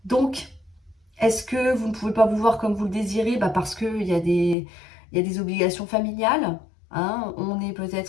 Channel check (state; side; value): drops out; right; at 4.5 s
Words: Donc, est-ce que vous ne pouvez pas vous voir comme vous le désirez? Parce qu'il y a des obligations familiales. Hein, on est